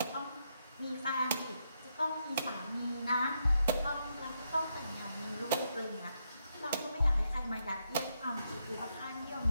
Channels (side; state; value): both; inverted; correlation -0.80